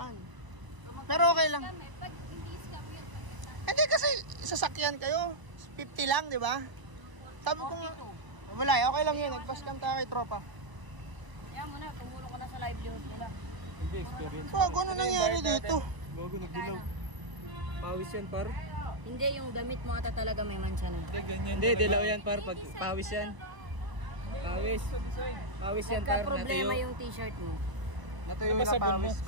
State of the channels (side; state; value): left; late; 1.0 ms